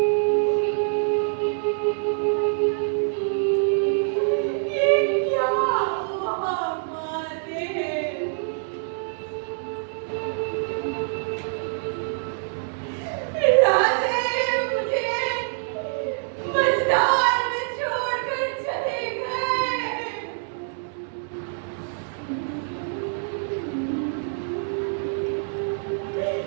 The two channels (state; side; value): silent; left; digital silence